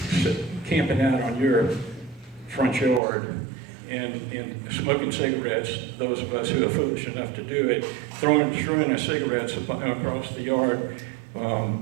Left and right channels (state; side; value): drops out; left; at 3.0 s